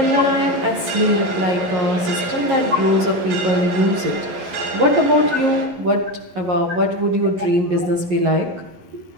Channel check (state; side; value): late; left; 11 ms